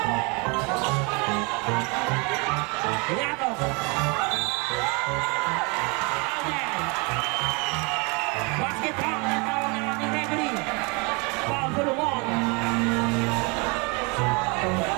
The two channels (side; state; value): left; quieter; 30.4 dB